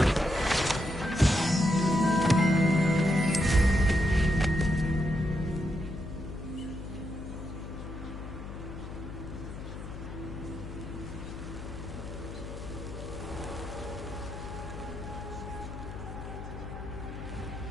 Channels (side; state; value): left; noise; hum, 9 dB below the sound